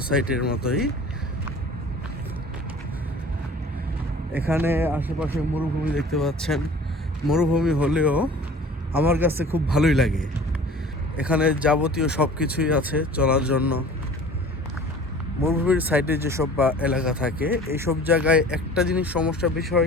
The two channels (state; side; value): normal; both; correlation 0.45